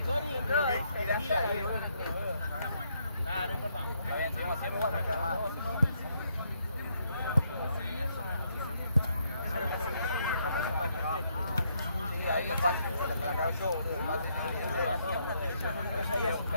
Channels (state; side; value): inverted; both; correlation -0.74